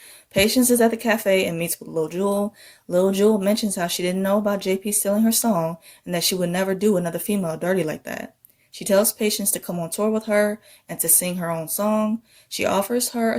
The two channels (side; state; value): both; identical; correlation 1.00